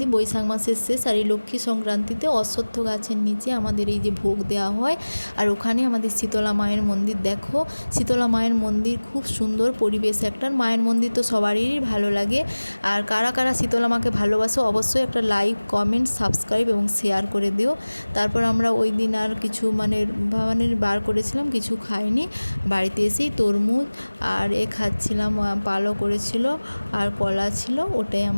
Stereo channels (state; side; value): inverted; both; correlation -1.00